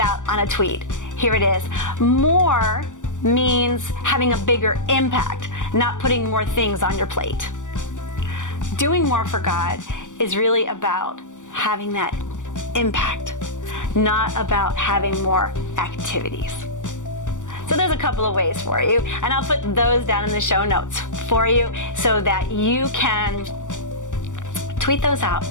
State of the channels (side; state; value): right; late; 0.86 ms